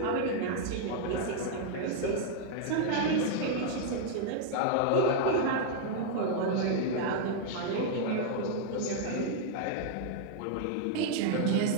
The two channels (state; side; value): different; both; correlation -0.01